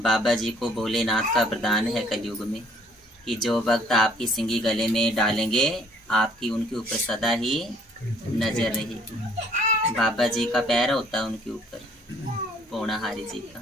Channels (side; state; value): both; normal; correlation 0.60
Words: जी को भोलेनाथ का वरदान है कलयुग में कि जो भक्त आपकी सिंगी गले में डालेंगे आपकी उनके ऊपर सदा ही नजर रहेगी। बाबा जी का पैर होता है उनके ऊपर, पूर्णाहारी जी का।